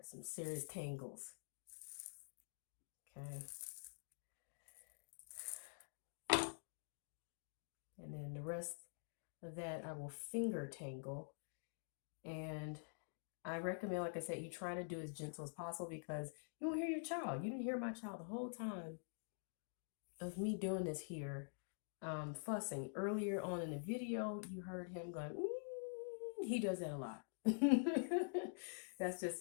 some serious tangles. Okay. And then the rest of that I will finger tangle. And I recommend, like I said, you try to do as gentle as possible, because you won't hear your child. You didn't hear my child the whole time of me doing this here, fussing. Earlier on in the video, you heard him going, he does that a lot. That's just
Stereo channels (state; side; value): silent; right; digital silence